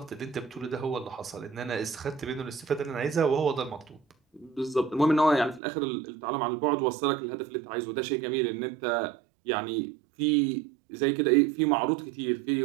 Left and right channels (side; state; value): left; drops out; at 5.6 s